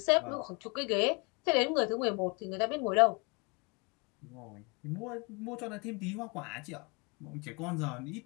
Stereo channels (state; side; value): quieter; right; 31.1 dB